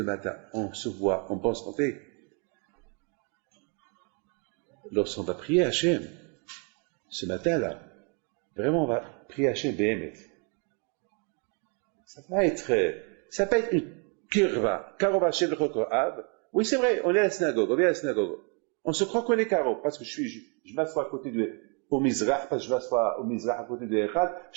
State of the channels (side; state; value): left; quieter; 35.6 dB